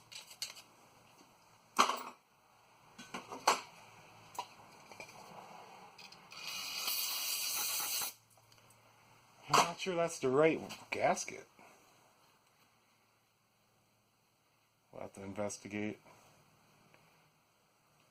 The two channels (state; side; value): identical; both; correlation 1.00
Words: not sure that's the right gasket. We'll have to investigate.